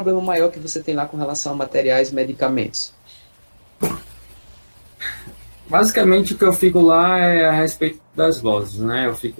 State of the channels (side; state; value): both; inverted; correlation -1.00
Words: maior que você tem lá com relação a materiais e medicamentos? Basicamente, o que eu fico lá é a respeito das glosas, né? Eu